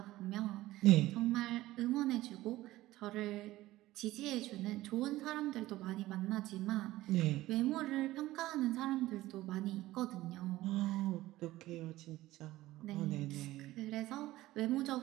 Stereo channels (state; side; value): quieter; left; 16.7 dB